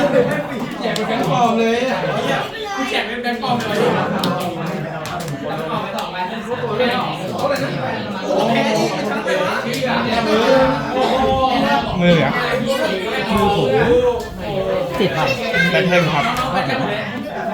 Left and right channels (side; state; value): both; identical; correlation 1.00